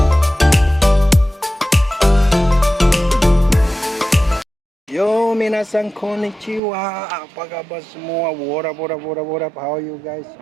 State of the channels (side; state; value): left; drops out; at 6.6 s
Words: Yo, minasan konnichiwa. Apa kabar semua? What up? How you guys